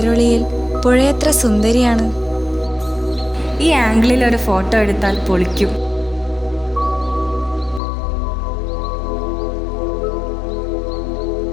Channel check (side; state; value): right; drops out; at 7.8 s